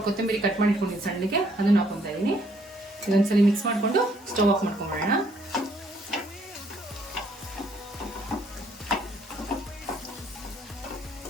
ಕೊತ್ತಂಬರಿ ಕಟ್ ಮಾಡಿ ಇಟ್ಕೊಂಡಿದ್ದೀನಿ ಸಣ್ಣಗೆ, ಅದನ್ನ ಹಾಕೊತಾ ಇದ್ದೀನಿ. ಇದೊಂದ್ಸಲಿ ಮಿಕ್ಸ್ ಮಾಡಿಕೊಂಡು ಸ್ಟವ್ ಆಫ್ ಮಾಡ್ಕೊಂಡ್ಬಿಡೋಣ.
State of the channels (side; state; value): both; normal; correlation 0.66